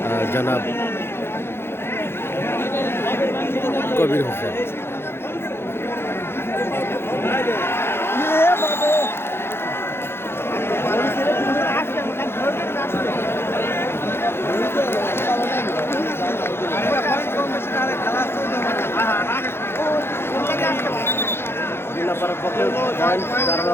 জনাব কবির হোসেন। জিল্লাপাড়ার পক্ষে পয়েন্ট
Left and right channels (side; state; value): right; late; 0.11 ms